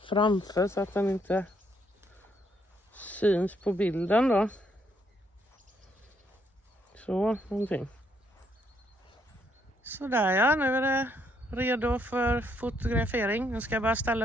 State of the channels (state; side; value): normal; both; correlation 0.72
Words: framför så att den inte syns på bilden då. Så, någonting. Sådär ja, nu är det redo för fotografering. Nu ska jag bara